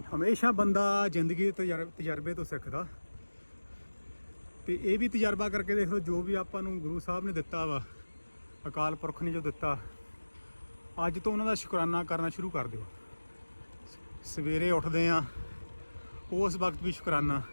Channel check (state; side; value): inverted; both; correlation -1.00